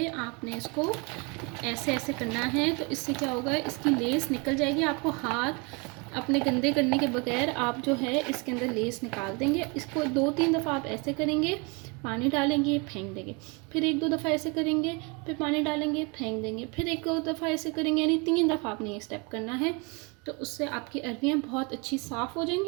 आपने इसको ऐसे ऐसे करना है। तो इससे क्या होगा, इसकी लेस निकल जाएगी। आपको हाथ अपने गंदे करने के बगैर आप जो है इसके अंदर लेस निकाल देंगे। इसको 2-3 दफ़ा आप ऐसे करेंगे, पानी डालेंगे, फेंक देंगे, फिर 1-2 दफ़ा ऐसे करेंगे, फिर पानी डालेंगे, फेंक देंगे, फिर 1-2 दफ़ा ऐसे करेंगे, यानी 3 दफ़ा आपने ये स्टेप करना है। तो उससे आपकी अरवियाँ बहुत अच्छी साफ़ हो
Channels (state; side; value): quieter; left; 30.5 dB